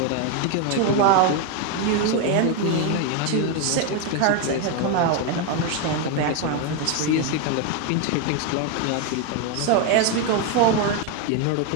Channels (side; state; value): both; different; correlation 0.01